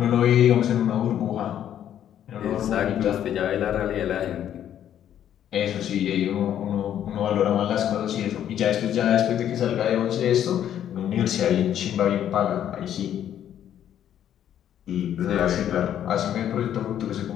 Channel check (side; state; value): right; quieter; 10.4 dB